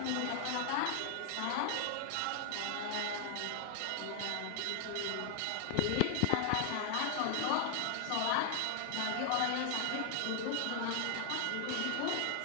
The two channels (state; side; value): different; both; correlation 0.00